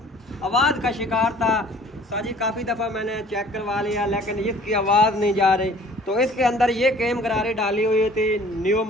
आवाज़ का शिकार था। साजी काफ़ी दफ़ा मैंने चेक करवा लिया लेकिन इसकी आवाज़ नहीं जा रही। तो इसके अंदर ये केम गरारी डाली हुई थी, न्यू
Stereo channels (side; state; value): both; normal; correlation 0.51